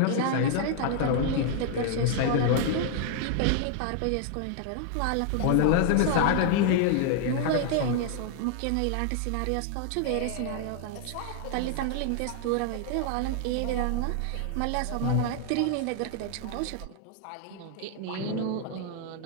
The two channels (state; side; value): different; both; correlation 0.00